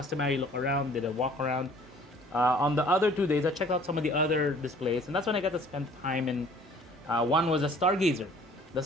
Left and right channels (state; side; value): normal; both; correlation 0.53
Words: look around, did a walk around. On the other 2 days, I checked out some of the other displays, and that's when I got to spend time in. One was a Stargazer. The